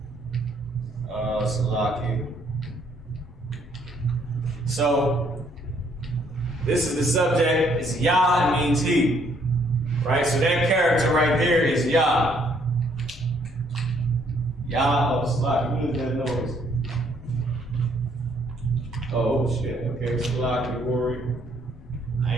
Salaki. So this is the subject. It's ya. It means he, right? So that character right there is ya. Ya. Oh, Salaki. What is that noise? Oh shit. Okay, Salaki, worry. I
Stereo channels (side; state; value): both; normal; correlation 0.67